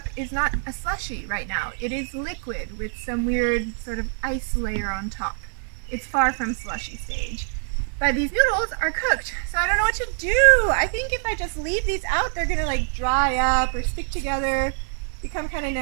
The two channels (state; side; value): silent; left; digital silence